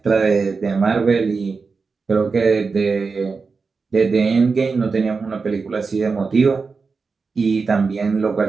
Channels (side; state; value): left; quieter; 4.7 dB